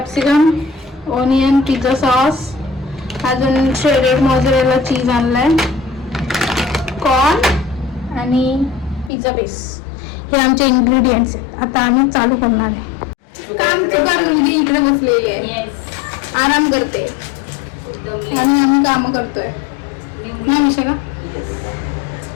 onion, pizza sauce, अजून श्रेडेड मोझरेला चीज आणलाय, कॉर्न आणि पिझ्झा बेस. हे आमचे इंग्रेडियंट्स आहेत. आता आम्ही चालू करणार आहे. काम चुकार मुलगी इकडे बसलेली आहे, आराम करते आणि आम्ही काम करतोय ना विशाखा.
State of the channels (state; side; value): drops out; right; at 9.1 s